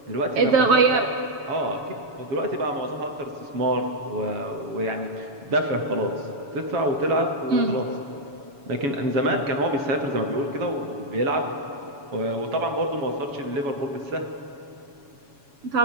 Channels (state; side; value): late; left; 7.1 ms